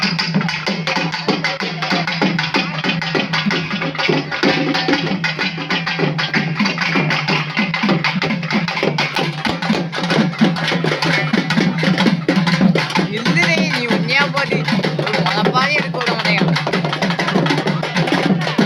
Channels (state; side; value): identical; both; correlation 1.00